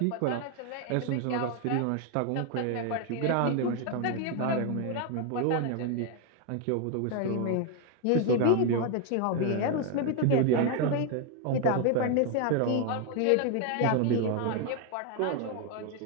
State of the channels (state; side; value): different; both; correlation 0.01